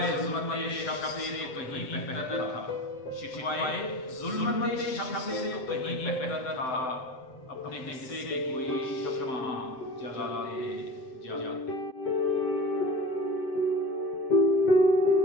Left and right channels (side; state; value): right; late; 7.8 ms